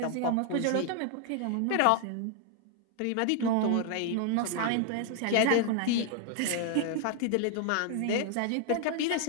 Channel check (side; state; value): both; different; correlation 0.00